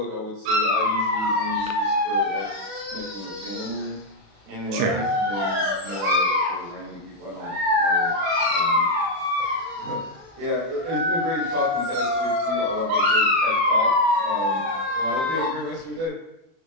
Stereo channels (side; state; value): left; late; 36 ms